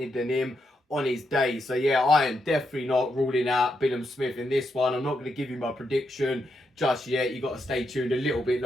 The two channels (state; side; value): normal; both; correlation 0.82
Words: than him on his day. So yeah, I am definitely not ruling out Billam-Smith in this one. I'm not going to give you my prediction just yet. You got to stay tuned a little bit